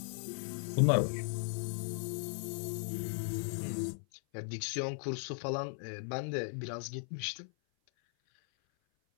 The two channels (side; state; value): right; silent; 53 dB below the other